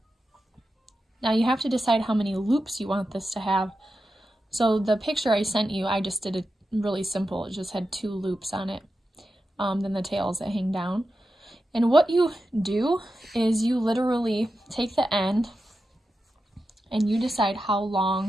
Now you have to decide how many loops you want this to have. So the picture I sent you, I just did it really simple. It just had 2 loops on it, then the tails that hang down. And what you do is you literally take the end and you decide how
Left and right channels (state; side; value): normal; both; correlation 0.90